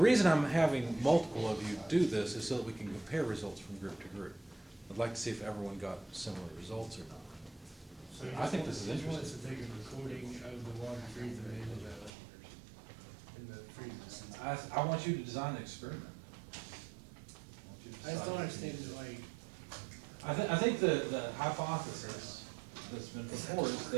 I'm having multiple of you do this is so that we can compare results from group to group. I'd like to see if everyone got similar results or not. So I think this is he wants interesting. to take a recording of the water freezing in the freezer. I want you to design the experiment. I want you to I just don't decide. understand it, like, I think the hypothesis that's been put forward is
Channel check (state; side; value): drops out; left; at 12.1 s